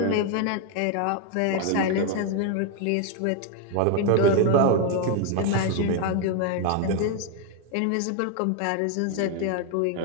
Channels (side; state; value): both; different; correlation 0.01